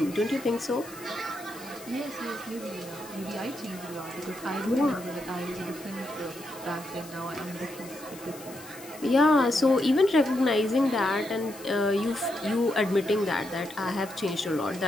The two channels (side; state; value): left; noise; hiss, 18 dB below the sound